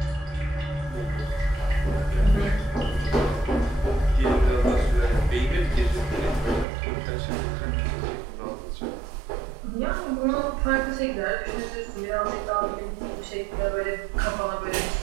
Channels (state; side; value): drops out; left; at 6.7 s